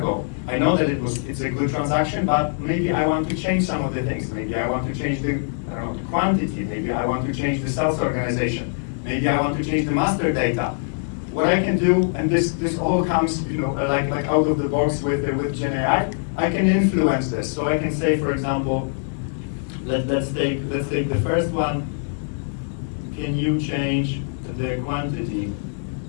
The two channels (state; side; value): silent; right; digital silence